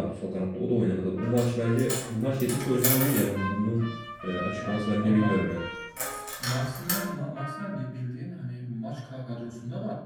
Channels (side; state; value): both; identical; correlation 1.00